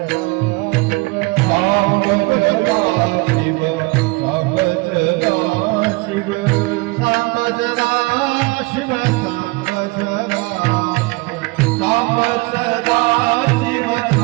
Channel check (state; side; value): quieter; left; 25.1 dB